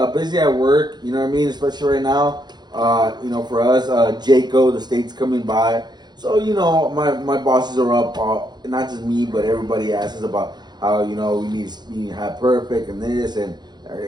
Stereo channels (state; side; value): late; left; 0.21 ms